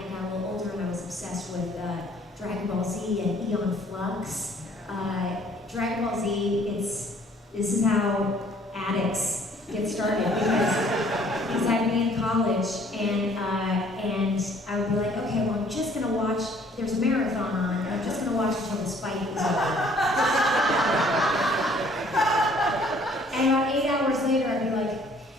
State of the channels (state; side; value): normal; both; correlation 0.59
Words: got a little older and I was obsessed with Dragon Ball Z and Eon Flux. Dragon Ball Z, this is how addicts get started, because I'd be in college and I would be like, okay, well, I'm just gonna watch, there's a marathon on, and I'm just gonna watch until this fight is over. And about 8 hours later, I'd be like,